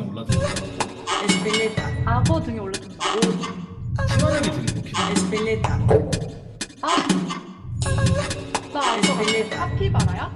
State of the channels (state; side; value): identical; both; correlation 1.00